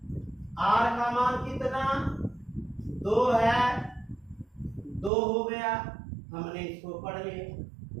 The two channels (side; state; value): left; drops out; at 5.1 s